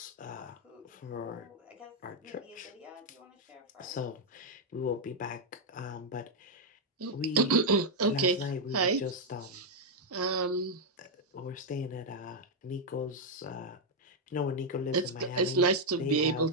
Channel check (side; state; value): both; normal; correlation 0.00